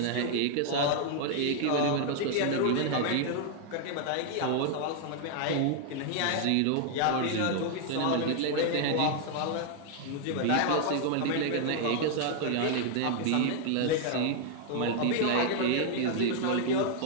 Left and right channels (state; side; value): different; both; correlation 0.00